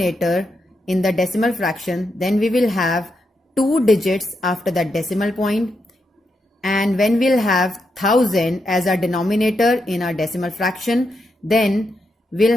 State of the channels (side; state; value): both; normal; correlation 0.83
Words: in the decimal fraction, then we will have 2 digits after the decimal point. And when we'll have 1000 as our denominator in our decimal fraction, then we'll